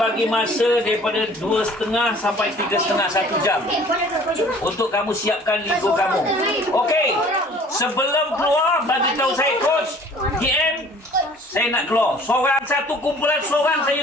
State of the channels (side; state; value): both; normal; correlation 0.51